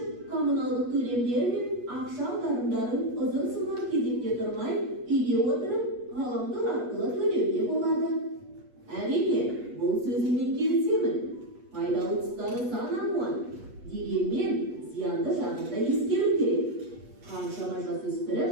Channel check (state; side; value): late; left; 8.3 ms